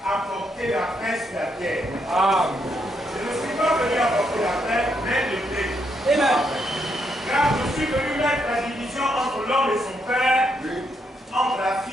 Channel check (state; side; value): normal; both; correlation 0.77